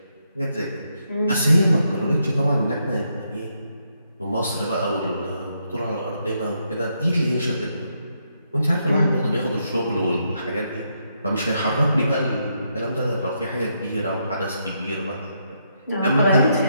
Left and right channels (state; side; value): inverted; both; correlation -0.79